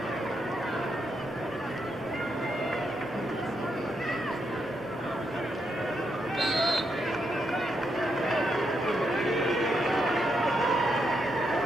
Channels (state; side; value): normal; both; correlation 0.80